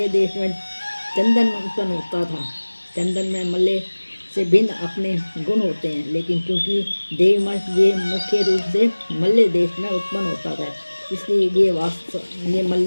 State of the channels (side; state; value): both; inverted; correlation -1.00